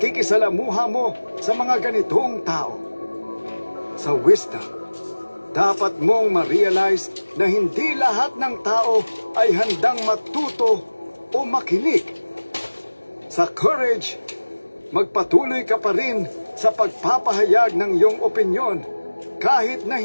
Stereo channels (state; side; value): inverted; both; correlation -1.00